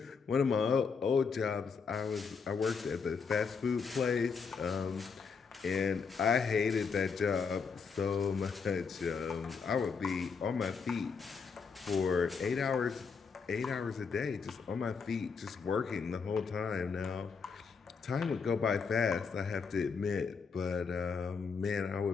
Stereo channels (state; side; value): quieter; right; 5.5 dB